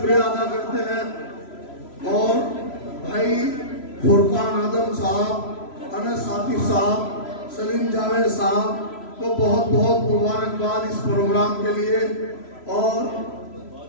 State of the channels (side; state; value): right; late; 3.0 ms